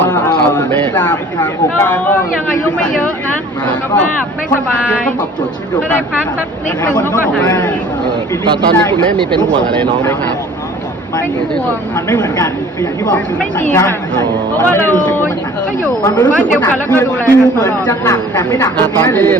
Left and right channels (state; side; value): normal; both; correlation 0.50